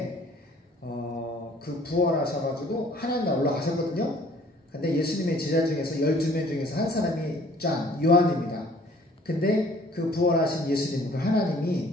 그 부활하셔가지고 하나님 나라 올라가셨거든요. 근데 예수님의 제자 중에서 12명 중에서 한 사람이 요한입니다. 근데 그 부활하신 예수님, 그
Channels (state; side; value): normal; both; correlation 0.55